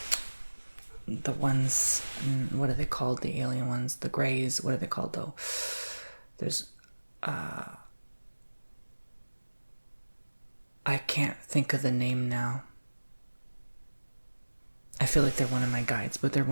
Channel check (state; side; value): inverted; both; correlation -1.00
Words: the ones, what are they called? The alien ones, the Greys, what are they called though? There's, I can't think of the name now. I feel like they're one of my guides, but they're